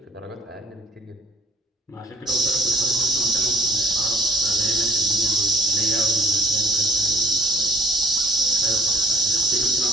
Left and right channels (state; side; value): normal; both; correlation 0.57